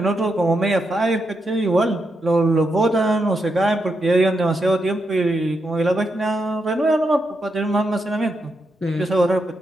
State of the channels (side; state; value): both; normal; correlation 0.83